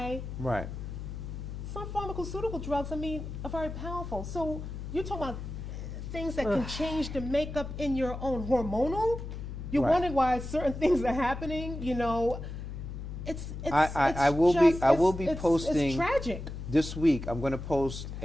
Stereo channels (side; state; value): left; noise; hum, 8 dB below the sound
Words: Right. some pharmaceutical drugs, are very powerful. So you're talking about things that can change the makeup in your own hormonal. You're Right. wondering why certain things are happening. You know, I will be it's posting tragic. this week. I'm going to post